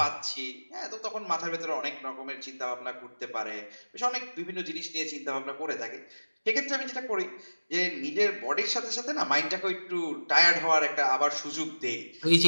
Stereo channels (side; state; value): both; inverted; correlation -1.00